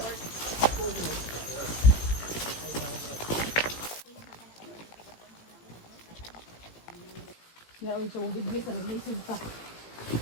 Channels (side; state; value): right; late; 18 ms